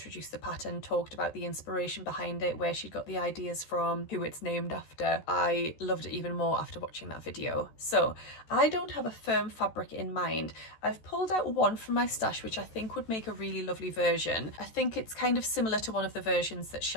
the pattern, talked about the inspiration behind it, where she got the ideas from, who it's named after. I loved it even more after watching that video. So I don't have a firm fabric in mind. I've pulled out one from my stash which I think would make a really lovely version. I think it's kind of similar to one of the versions that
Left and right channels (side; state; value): right; late; 14 ms